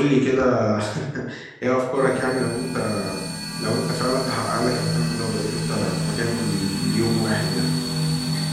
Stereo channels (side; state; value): both; identical; correlation 1.00